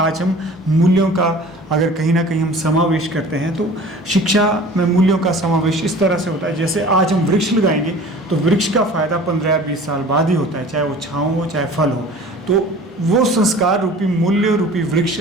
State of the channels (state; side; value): normal; both; correlation 0.43